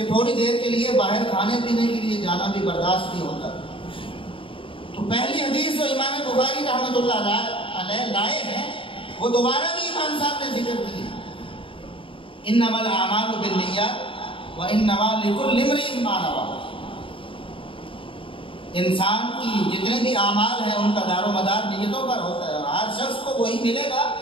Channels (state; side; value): late; right; 0.25 ms